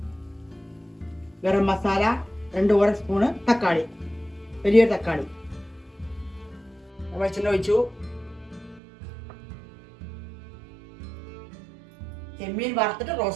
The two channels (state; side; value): drops out; left; at 8.8 s